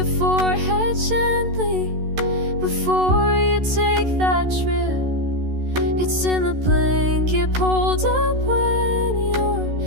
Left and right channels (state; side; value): late; left; 13 ms